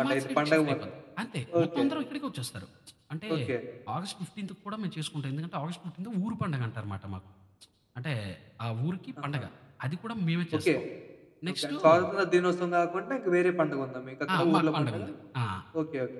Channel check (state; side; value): identical; both; correlation 1.00